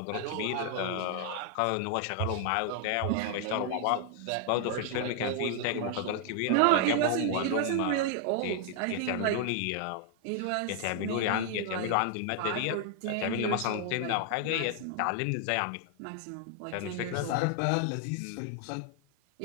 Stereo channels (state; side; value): different; both; correlation 0.00